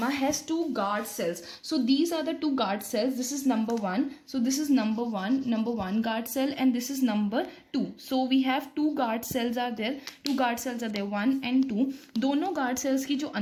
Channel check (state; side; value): identical; both; correlation 1.00